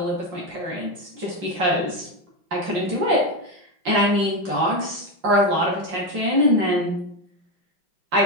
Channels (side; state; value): left; late; 5.6 ms